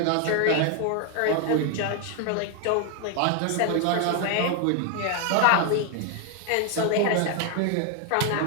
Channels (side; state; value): both; different; correlation 0.00